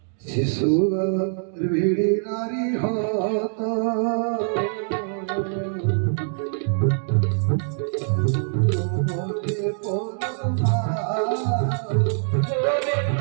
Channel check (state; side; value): silent; left; digital silence